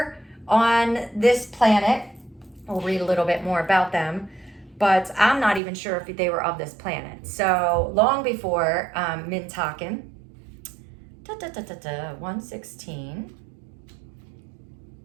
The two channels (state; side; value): drops out; left; at 5.6 s